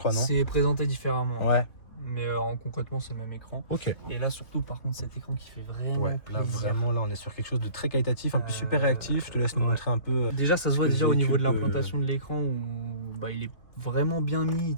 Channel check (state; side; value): late; right; 3.0 ms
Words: non? C'est présenté différemment. Ouais. Mais concrètement, c'est le même écran. Ok. Et là, surtout, par contre, cet écran qui fait vraiment. Ouais, là, vraiment, là, on est sur quelque chose de très qualitatif, un peu super réactif. Je te laisse nous montrer un peu. Déjà, ça se voit déjà au niveau de l'implantation de l'écran où il est vraiment bien mis, il